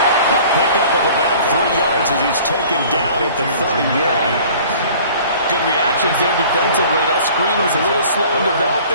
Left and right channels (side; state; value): both; inverted; correlation -0.48